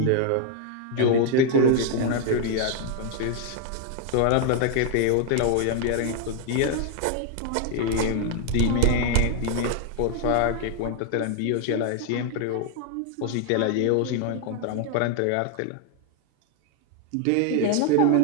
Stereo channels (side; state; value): both; different; correlation 0.00